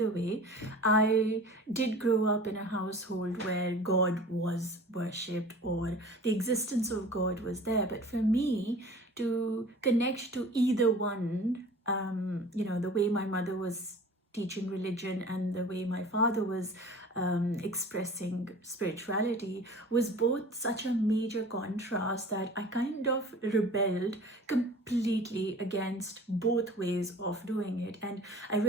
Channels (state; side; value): normal; both; correlation 0.43